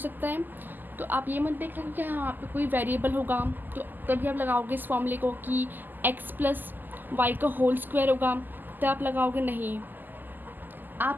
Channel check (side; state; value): left; late; 0.088 ms